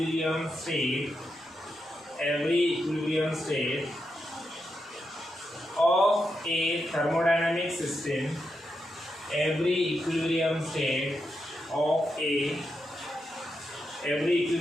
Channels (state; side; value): normal; both; correlation 0.85